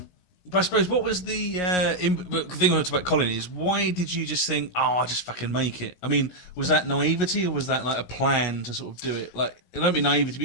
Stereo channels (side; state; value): right; late; 17 ms